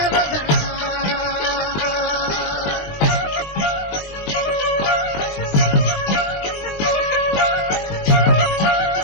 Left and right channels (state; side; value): late; right; 20 ms